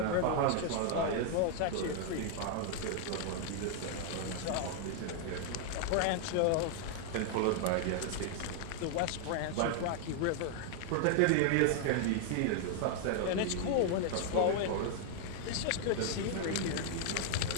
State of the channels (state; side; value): different; both; correlation 0.00